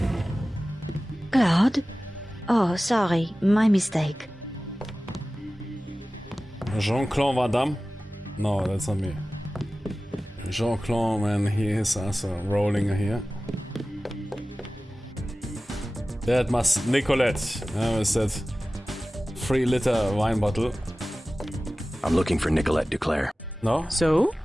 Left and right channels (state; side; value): normal; both; correlation 0.96